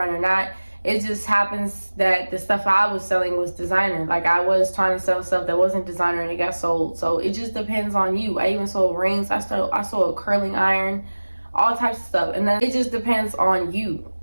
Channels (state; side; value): inverted; both; correlation -1.00